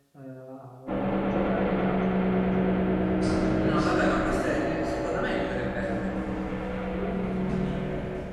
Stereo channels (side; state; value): both; identical; correlation 1.00